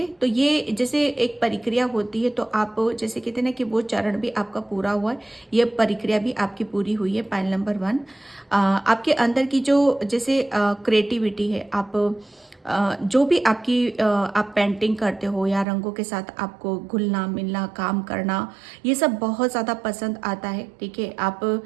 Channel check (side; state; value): left; drops out; at 15.7 s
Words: तो ये जैसे एक प्रक्रिया होती है, तो आप जैसे कहते हैं ना कि वो चरण भी आपका पूरा हुआ है, ये प्रक्रिया भी आपकी पूरी हुई है। पायल नंबर 1 आपके अंदर की जो जैसे क्रिएटिविटी है, आप जो भी आपकी आप पेंटिंग करते हो या रंगों के साथ आपको घुलना मिलना, काम करना, ये सब बहुत ज़्यादा पसंद आता है। ठीक है, आप